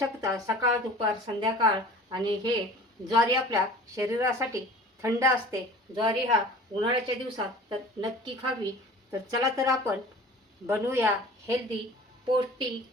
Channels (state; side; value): normal; both; correlation 0.43